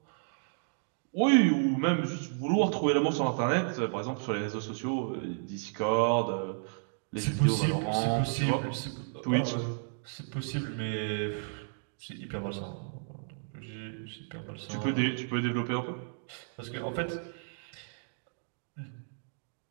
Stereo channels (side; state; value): left; silent; digital silence